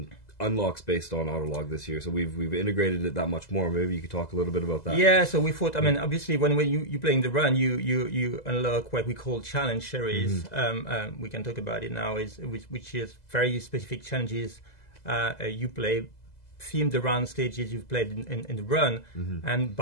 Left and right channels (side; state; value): right; late; 2.0 ms